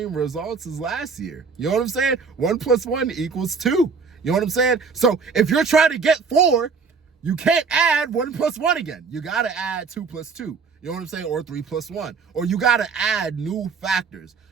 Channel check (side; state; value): left; quieter; 5.2 dB